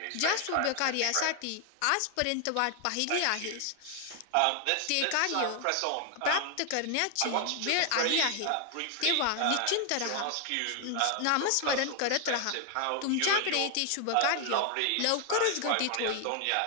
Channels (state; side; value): different; both; correlation 0.00